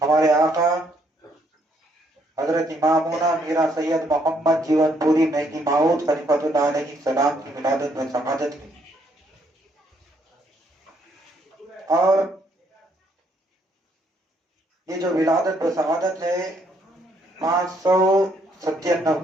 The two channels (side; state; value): both; normal; correlation 0.70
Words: آقا حضرت امامونا میرا سید محمد جیون پوری مہدی ماؤد خلیفۃ اللہ علیہ السلام کی ولادت میں شہادت کی، اور یہ جو ولادت و شہادت ہے 597